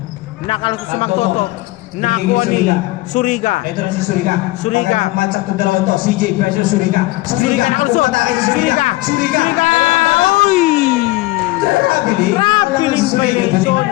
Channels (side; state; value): right; quieter; 19.6 dB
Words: Nakalusot sa Magtoto. Nakuha ni Suriga. Ito na si Suriga. Suriga. Ang matchup ng dalawa to. CJ versus Suriga. Suriga nakalusot. Umatake si Suriga. Suriga. Uy! Grabe Grabe yung violation.